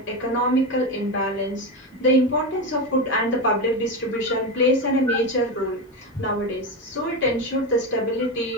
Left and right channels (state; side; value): normal; both; correlation 0.16